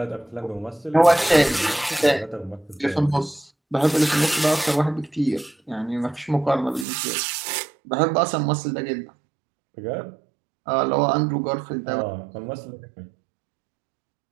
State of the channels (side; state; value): left; drops out; at 6.9 s